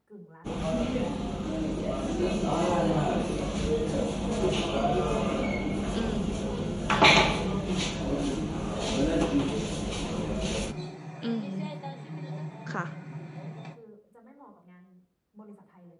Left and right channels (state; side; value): identical; both; correlation 1.00